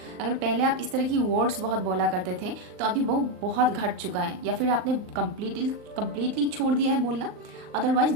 अगर पहले आप इस तरह की वर्ड्स बहुत बोला करते थे तो अभी वो बहुत घट चुका है, या फिर आपने कंप्लीटली छोड़ दिया है बोलना, अदरवाइज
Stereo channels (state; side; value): late; left; 39 ms